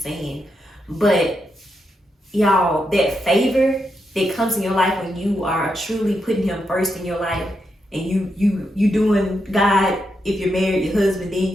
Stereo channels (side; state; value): both; normal; correlation 0.83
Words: But y'all, that favor that comes in your life when you are truly putting him first in your life, and you doing God, if you're married, your husband, then